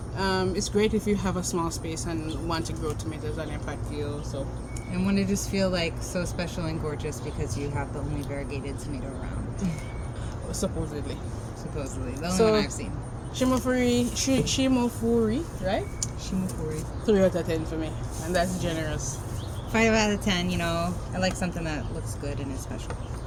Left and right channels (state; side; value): identical; both; correlation 1.00